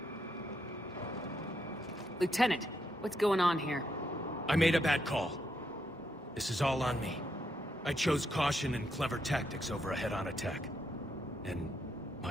Lieutenant, what's going on here? I made a bad call. This is all on me. I chose caution and clever tactics over a head-on attack. And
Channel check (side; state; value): both; normal; correlation 0.79